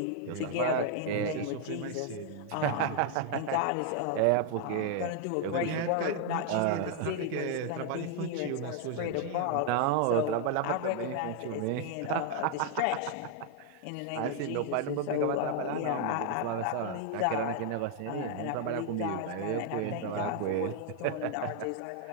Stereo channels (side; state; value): both; different; correlation 0.00